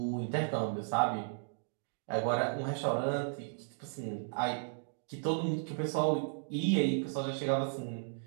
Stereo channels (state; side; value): silent; left; digital silence